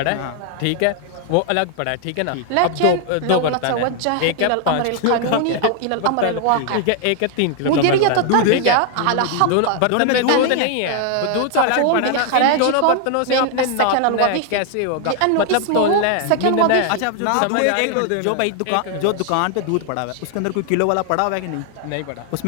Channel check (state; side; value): different; both; correlation 0.00